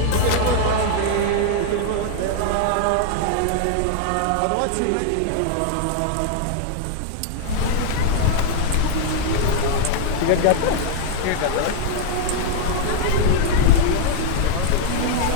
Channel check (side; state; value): both; different; correlation 0.00